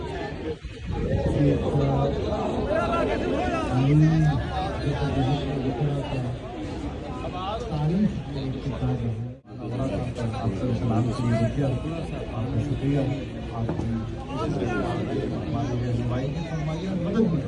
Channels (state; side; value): identical; both; correlation 1.00